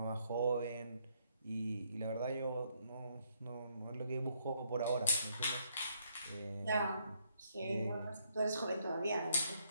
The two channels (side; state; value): both; inverted; correlation -0.72